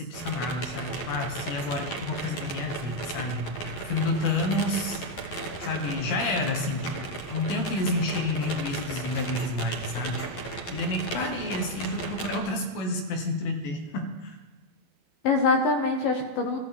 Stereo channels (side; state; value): right; late; 11 ms